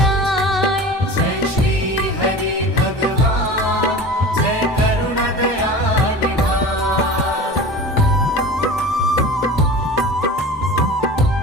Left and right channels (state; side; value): normal; both; correlation 0.35